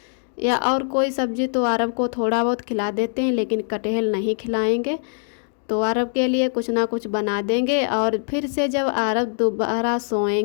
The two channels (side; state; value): right; silent; digital silence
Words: या और कोई सब्जी, तो आरब को थोड़ा बहुत खिला देते हैं, लेकिन कटहल नहीं खिलाएंगे। तो आरब के लिए कुछ ना कुछ बना देंगे और फिर से जब आरब दोबारा